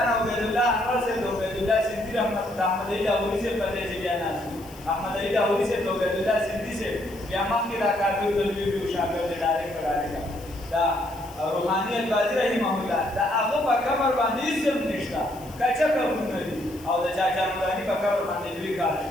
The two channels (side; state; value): left; noise; hiss, 21 dB below the sound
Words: عبید الله انور صاحب د عبید الله سندي رحمت د احمد علي لاهوري صاحب په دې چې بیا ناست احمد علي لاهوري صاحب د عبید الله سندي صاحب بیا مخکې دا کابل د لوی شاګرد ډایرکټ دا روحاني البازي رحمه الله دا هغه په قبر باندې هېڅ نشته کچه قبرونه دي او د چاچا نوراني په قبر باندې لوی کار